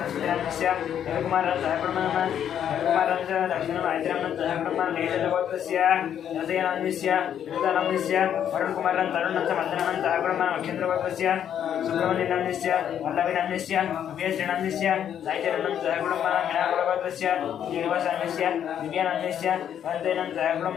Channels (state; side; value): quieter; right; 9.4 dB